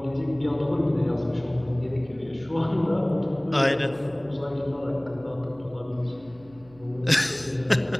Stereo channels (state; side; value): noise; right; hum, 25 dB below the sound